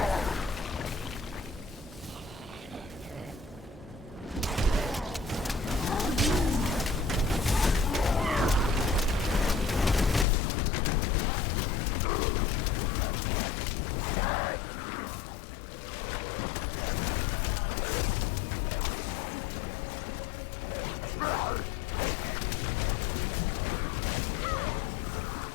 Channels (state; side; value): drops out; right; at 10.2 s